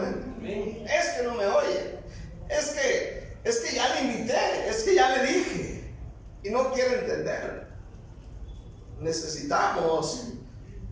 Es que no me oye. Es que ya le invité. Es que ya le dije. Y no quiere entender. Necesitamos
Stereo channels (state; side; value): identical; both; correlation 1.00